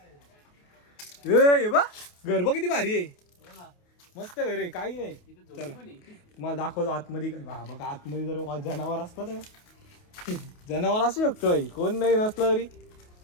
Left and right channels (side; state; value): right; late; 28 ms